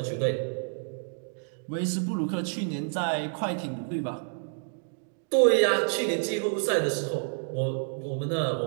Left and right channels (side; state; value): left; silent; digital silence